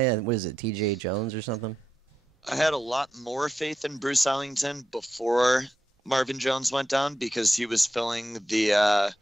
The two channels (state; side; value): normal; both; correlation 0.87